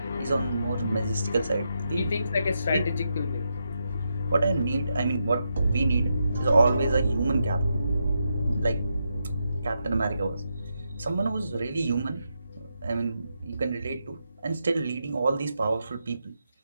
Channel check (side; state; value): both; inverted; correlation -0.84